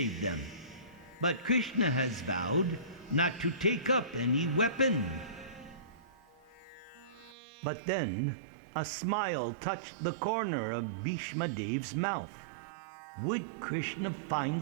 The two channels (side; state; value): left; drops out; at 7.4 s